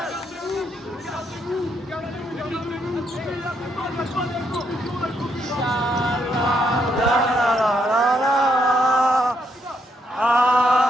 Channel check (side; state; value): both; normal; correlation 0.76